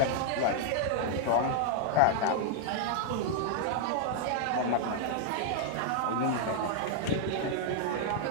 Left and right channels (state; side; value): different; both; correlation -0.01